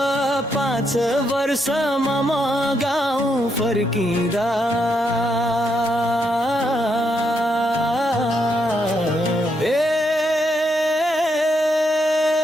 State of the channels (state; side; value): normal; both; correlation 0.79